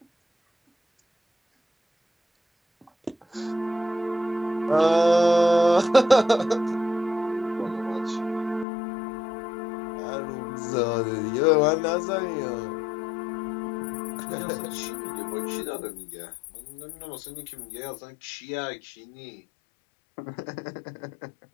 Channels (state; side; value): drops out; right; at 8.7 s